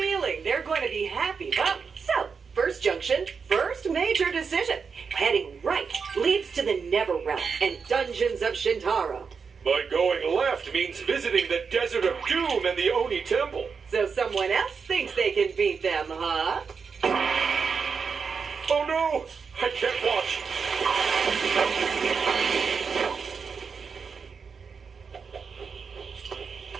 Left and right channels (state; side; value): quieter; left; 5.6 dB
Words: they're going to be happy, huh? So, first junction, first major decision. Heading right leads to the Netherrealm and Dungeons of Shintaro. But going left means visiting the Desert of Doom and the Oni Temple. So someone else thinks they can beat them, huh? Oh no! I can't watch.